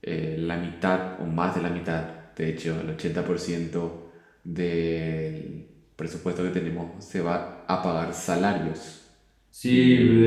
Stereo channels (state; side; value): identical; both; correlation 1.00